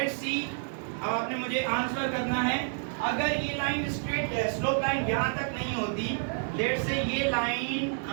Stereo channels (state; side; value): silent; left; 58 dB below the other